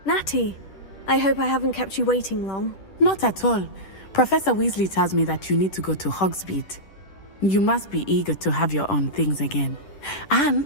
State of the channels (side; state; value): right; late; 10 ms